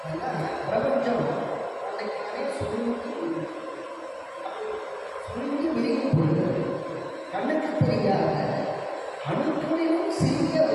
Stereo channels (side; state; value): both; identical; correlation 1.00